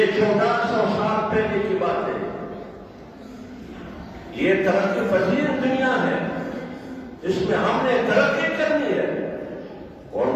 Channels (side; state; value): both; identical; correlation 1.00